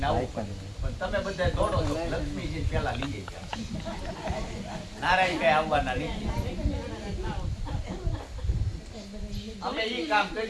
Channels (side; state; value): both; identical; correlation 1.00